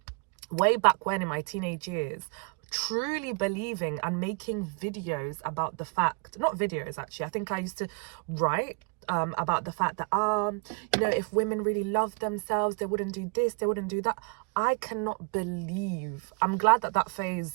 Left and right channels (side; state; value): left; quieter; 32.5 dB